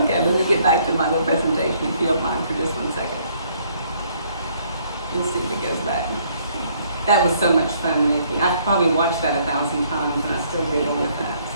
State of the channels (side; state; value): both; inverted; correlation -0.65